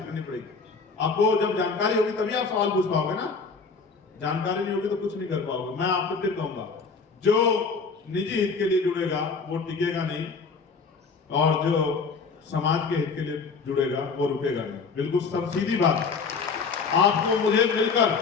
करनी पड़ेगी। आपको जब जानकारी होगी तभी आप सवाल पूछ पाओगे ना, जानकारी नहीं होगी तो कुछ नहीं कर पाओगे। मैं आपको फिर कहूंगा, जो निजी हित के लिए जुड़ेगा वो टिकेगा नहीं, और जो समाज के हित के लिए जुड़ेगा वो रुकेगा नहीं। बिल्कुल सब सीधी बात। आपको मुझे मिलकर,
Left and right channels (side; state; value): right; quieter; 4.9 dB